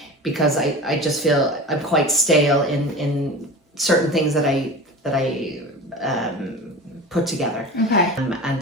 Because I just feel I'm quite stale in certain things that I put together. Okay.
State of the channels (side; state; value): both; normal; correlation 0.34